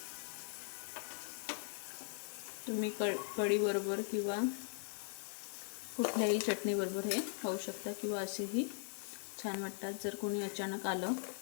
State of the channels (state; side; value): silent; right; 51 dB below the other